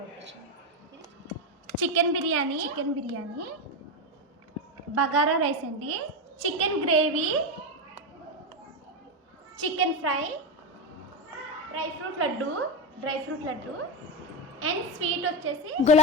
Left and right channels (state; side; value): normal; both; correlation 0.12